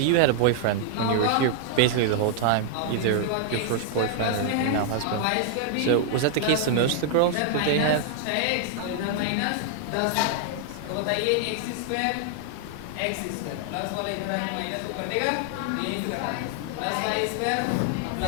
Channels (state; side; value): different; both; correlation 0.00